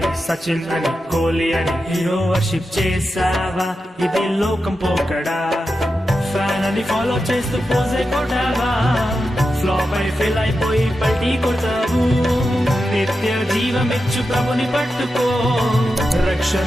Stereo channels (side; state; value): both; normal; correlation 0.90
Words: సచిన్ అని, కోహ్లీ అని హీరో వర్షిప్ చేసావా, ఇది లోకం పోకడా. ఫ్యాన్ అని ఫాలో చేస్తూ పోజే కొట్టావా, ఫ్లాప్ అయి ఫెయిల్ అయిపోయి పల్టీ కొట్టావు. నిత్య జీవమిచ్చు ప్రభుని పట్టుకో,